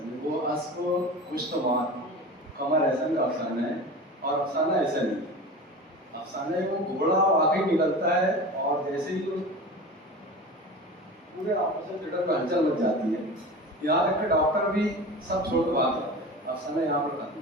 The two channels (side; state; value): both; normal; correlation 0.32